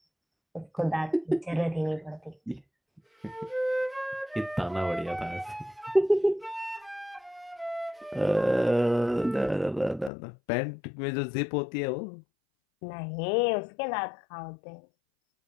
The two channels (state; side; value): drops out; right; at 10.1 s